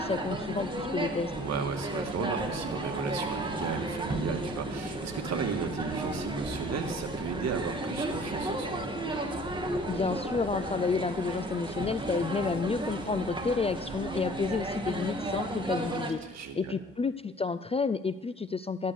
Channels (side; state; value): both; normal; correlation 0.50